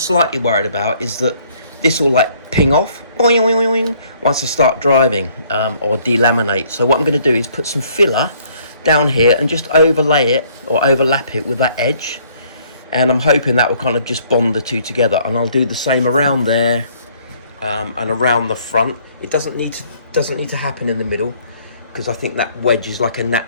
worried about is that this will like ping off boing, boing, boing, once I start driving, or delaminate. So what I'm going to do is put some filler down here and just overlay it or overlap it with that edge, and I'm hoping that will kind of just bond the two together. And I'll do the same around there and around the front. It doesn't need to happen in the middle, because I think that wedge is like a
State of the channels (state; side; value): inverted; both; correlation -0.62